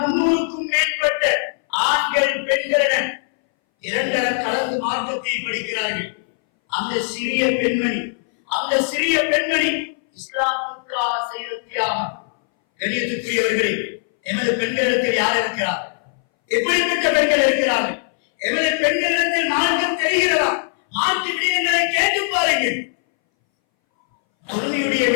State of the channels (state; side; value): silent; right; 62 dB below the other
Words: 300க்கும் மேற்பட்ட ஆண்கள் பெண்களுடன் இரண்டர கலந்து மார்க்கத்தை படிக்கிறார்கள். அந்த சிறிய பெண்மணி இஸ்லாமுக்காக செய்த தியாகம். கண்ணியத்துக்குரியவர்களே, எமது பெண்களிடத்தில் யார் இருக்கிறார்? எப்படிப்பட்ட பெண்கள் இருக்கிறார்கள்? எமது பெண்களிடத்தில் மார்க்கம் தெரிகிறதா? மார்க்க விடயங்களை கேட்டு பாருங்கள். தொழுகையுடைய